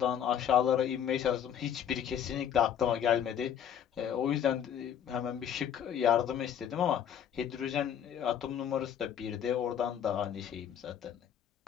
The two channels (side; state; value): right; quieter; 9.2 dB